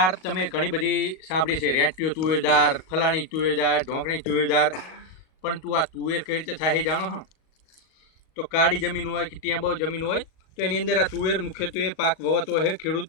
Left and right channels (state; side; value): late; right; 38 ms